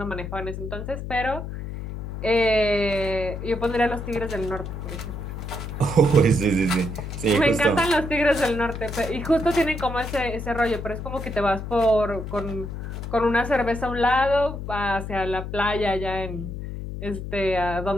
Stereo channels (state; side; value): noise; left; hum, 7 dB below the sound